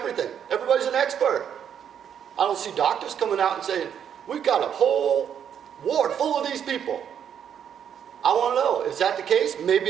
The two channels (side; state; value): left; quieter; 8.6 dB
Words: Everybody's an expert. I don't see doctors coming out and saying, we've got a whole ward full of these people. I want to know, is that the case?